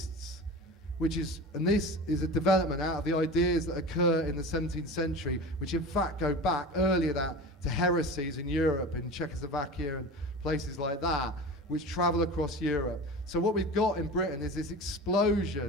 and this is a development out of the ideas that occur in the 17th century, which in fact go back earlier to heresies in Europe, in Czechoslovakia and places like that, which travel across Europe. So what we've got in Britain is this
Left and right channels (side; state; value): both; normal; correlation 0.32